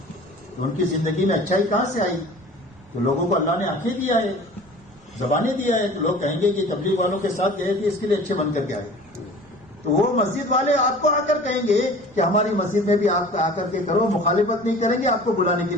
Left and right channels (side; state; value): right; noise; rumble, 26 dB below the sound